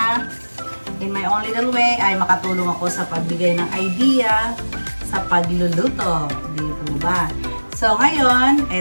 in my own little way, ay makatulong ako sa pagbigay ng idea sa pagluluto, di po ba? So ngayon,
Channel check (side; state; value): both; inverted; correlation -1.00